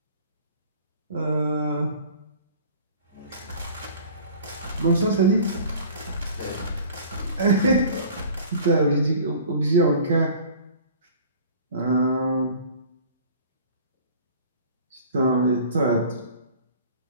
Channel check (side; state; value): both; inverted; correlation -0.46